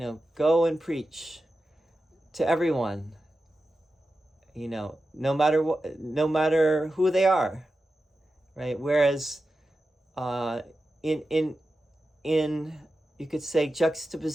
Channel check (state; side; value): normal; both; correlation 0.92